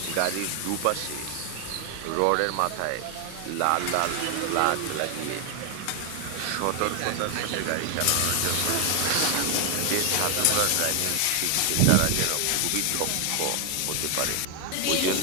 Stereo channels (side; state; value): both; different; correlation 0.00